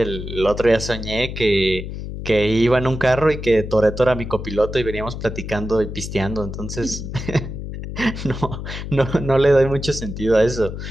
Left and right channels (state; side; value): noise; left; hum, 8 dB below the sound